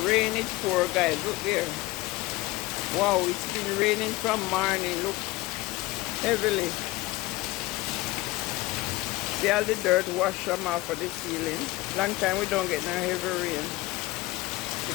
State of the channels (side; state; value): right; quieter; 19.5 dB